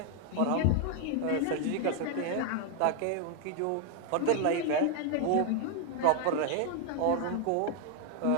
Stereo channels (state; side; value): different; both; correlation 0.00